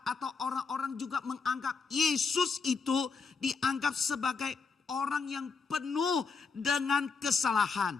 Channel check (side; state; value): right; quieter; 5.0 dB